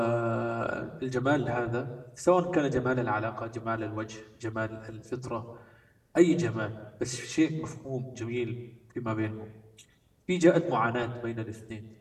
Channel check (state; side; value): identical; both; correlation 1.00